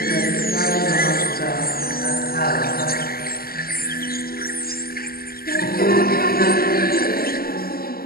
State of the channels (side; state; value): right; late; 0.43 ms